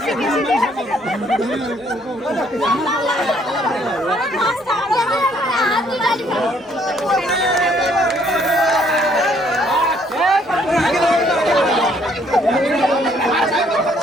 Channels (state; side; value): normal; both; correlation 0.65